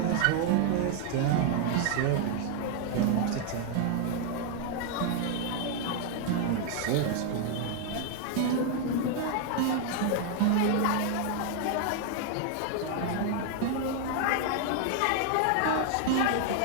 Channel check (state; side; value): different; both; correlation 0.00